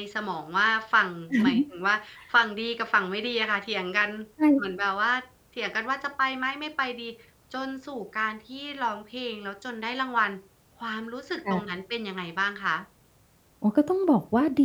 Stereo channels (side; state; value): both; identical; correlation 1.00